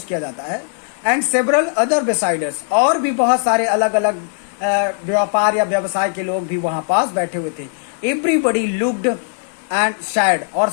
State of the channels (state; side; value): silent; right; 67 dB below the other